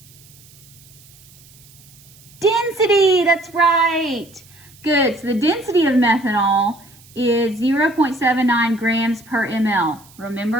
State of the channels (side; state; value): right; noise; hiss, 25 dB below the sound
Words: Density, that's right. Good, so the density of methanol is 0.79 grams per ml.